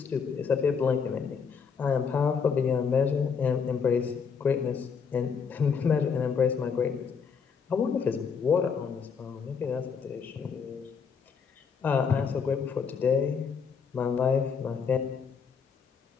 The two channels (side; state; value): right; quieter; 6.2 dB